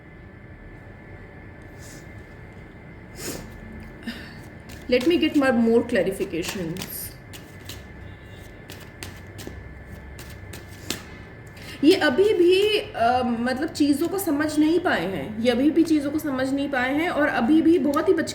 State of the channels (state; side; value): identical; both; correlation 1.00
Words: Let me get more clarifications. ये अभी भी मतलब चीज़ों को समझ नहीं पाए हैं, ये अभी भी चीज़ों को समझ नहीं पाए हैं, और अभी भी बहुत ही